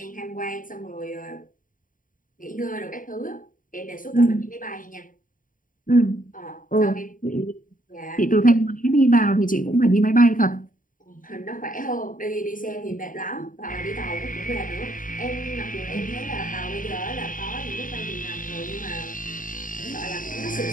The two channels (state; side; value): late; right; 0.39 ms